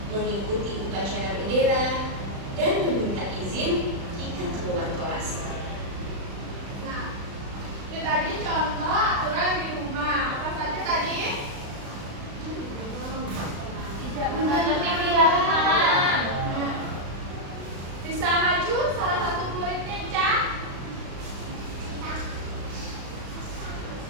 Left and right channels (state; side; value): late; left; 36 ms